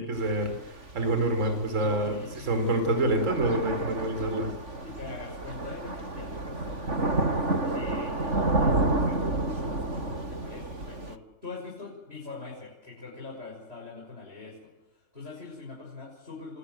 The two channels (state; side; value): late; left; 3.5 ms